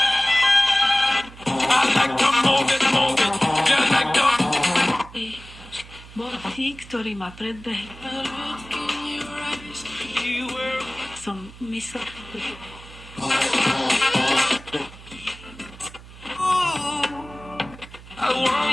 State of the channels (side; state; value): right; noise; hum, 18 dB below the sound